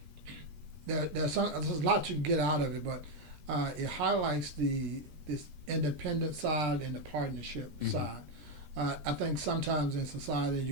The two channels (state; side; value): late; left; 13 ms